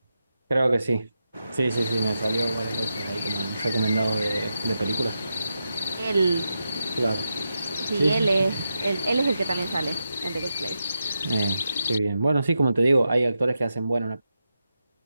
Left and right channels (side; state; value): both; inverted; correlation -0.88